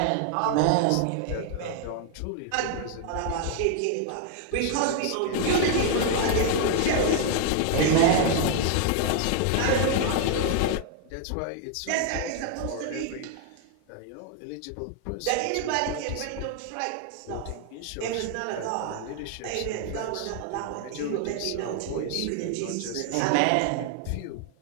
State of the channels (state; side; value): different; both; correlation 0.00